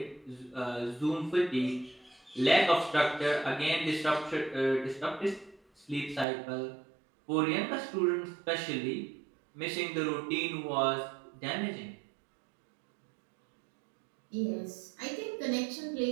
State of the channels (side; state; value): left; drops out; at 6.2 s